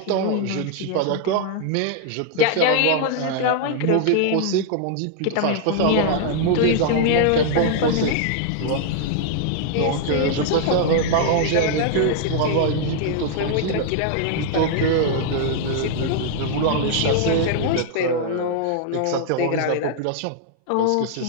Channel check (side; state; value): both; different; correlation 0.00